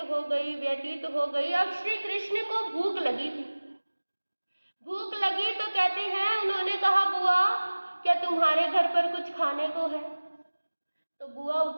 हो गई। अब श्री कृष्ण को भूख लगी थी। भूख लगी तो कहते हैं, उन्होंने कहा, बुआ क्या तुम्हारे घर पर कुछ खाने को है? तो बुआ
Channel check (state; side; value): inverted; both; correlation -1.00